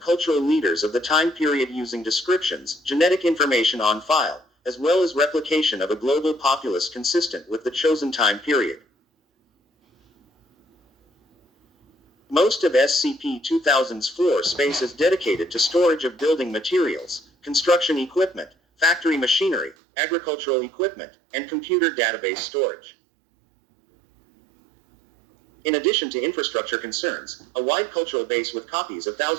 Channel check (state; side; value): drops out; left; at 19.8 s